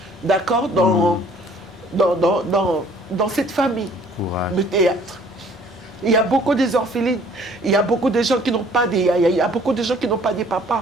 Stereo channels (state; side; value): normal; both; correlation 0.56